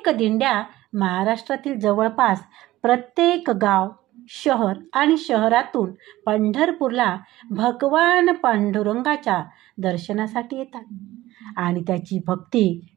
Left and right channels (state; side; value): quieter; left; 16.4 dB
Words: दिंड्या महाराष्ट्रातील जवळपास प्रत्येक गाव, शहर आणि शहरातून पंढरपूरला भगवान पांडुरंगाच्या दर्शनासाठी येतात आणि त्याची भक्ती